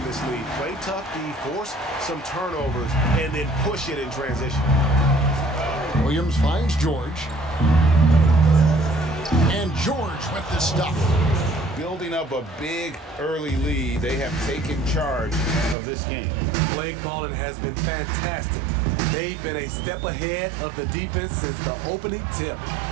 this lead. Play tough D, force some turnovers, and then push it in transition. Williams finds George. And George with the stuff. Building up a big early lead, they have taken charge of this game. Play calling has been fantastic. They've been a step ahead of the defense since the opening tip.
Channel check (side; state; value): left; drops out; at 15.8 s